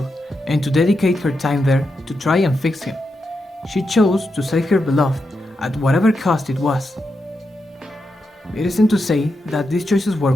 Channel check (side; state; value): both; normal; correlation 0.86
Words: and to dedicate her time there to try and fix him. She chose to save her beloved at whatever cost it was. It isn't to say that these choices were